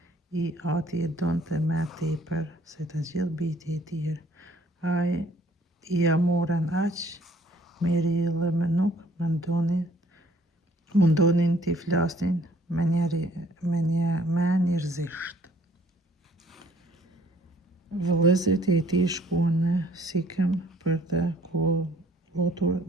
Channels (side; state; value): both; normal; correlation 0.59